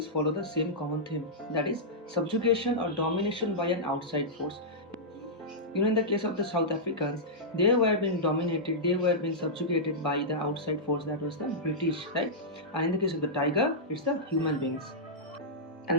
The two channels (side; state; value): both; normal; correlation -0.12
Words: follow the same common theme, that is subjugation or domination by an outside force. In the case of the South Africans, they were being dominated, they were being subjugated by the outside force, that was the British, right? And in the case of the tiger, it's the human beings.